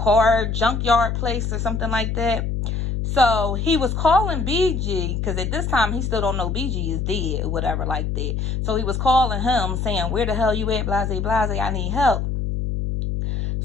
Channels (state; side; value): noise; left; hum, 1 dB below the sound